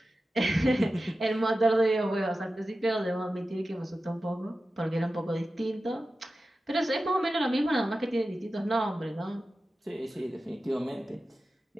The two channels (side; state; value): both; normal; correlation 0.93